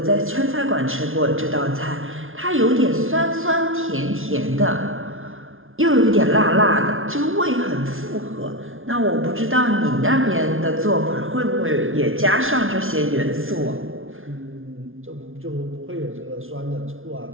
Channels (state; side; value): late; left; 0.59 ms